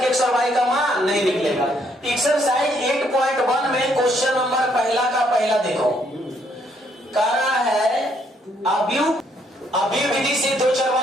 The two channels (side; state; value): both; normal; correlation 0.70